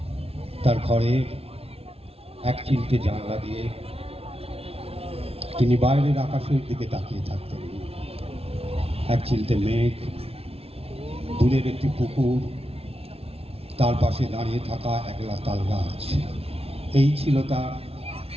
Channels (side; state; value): left; late; 0.29 ms